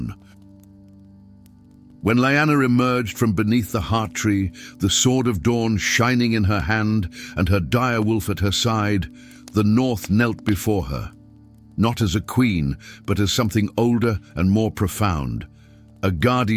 When Lyanna emerged from beneath the heart tree, the Sword of Dawn shining in her hand and her direwolf at her side, the North knelt before her, not as a queen, but as something older and more profound. A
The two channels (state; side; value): identical; both; correlation 1.00